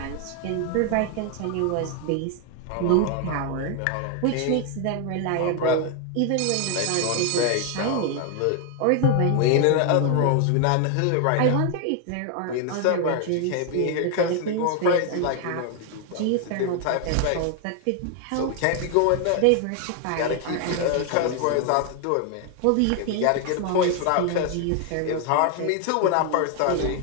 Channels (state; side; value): different; both; correlation 0.00